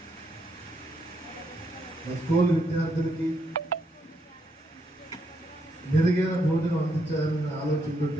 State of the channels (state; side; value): normal; both; correlation 0.77